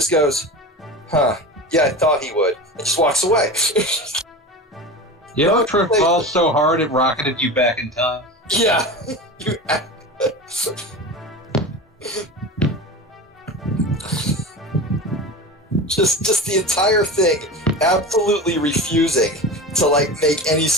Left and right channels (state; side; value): normal; both; correlation 0.29